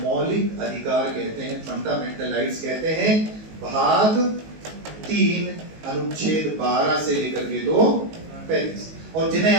अधिकार कहते हैं, फंडामेंटल राइट्स कहते हैं, भाग 3 अनुच्छेद 12 से लेकर के 2:35। और जिन्हें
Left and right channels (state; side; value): late; left; 19 ms